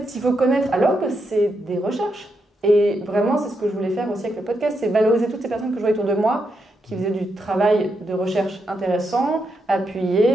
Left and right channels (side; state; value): both; normal; correlation 0.82